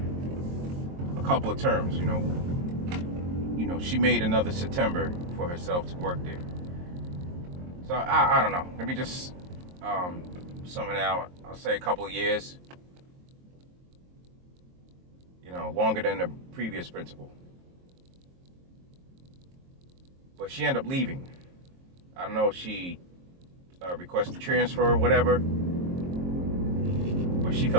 a couple of terms, you know, she made another September for herself to work there. So I don't know. Let me just sum it out. I'll say a couple of years. Longer than the previous principal. But she ended up leaving. I don't know if she requested transfer or whatever, but she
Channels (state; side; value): late; left; 22 ms